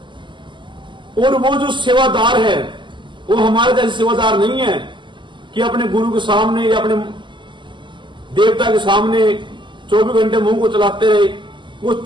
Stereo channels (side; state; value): left; late; 0.23 ms